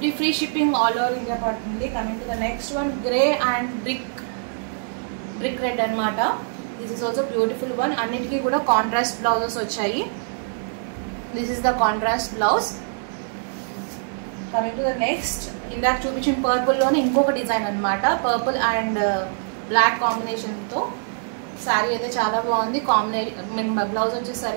free shipping all over India పడుతుంది. Coming to the next one, grey and brick red అనమాట. This is also beautiful one. అన్నిటికీ కూడా కాంట్రాస్ట్ బ్లౌజెస్ వచ్చాయి. This is the contrast blouse. Coming to the next, ఇందాక చూపించిన పర్పుల్లోనే ఇంకొక డిజైన్ అనమాట. పర్పుల్ అండ్ బ్లాక్ కాంబినేషన్తో శారీ అయితే చాలా బాగుంది. బ్లౌజ్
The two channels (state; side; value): silent; left; digital silence